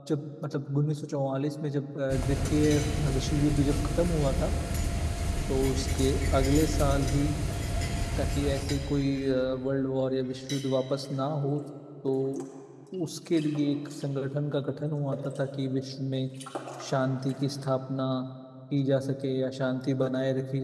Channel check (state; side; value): identical; both; correlation 1.00